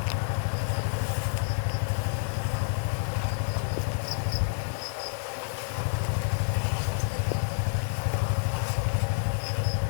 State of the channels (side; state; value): right; silent; digital silence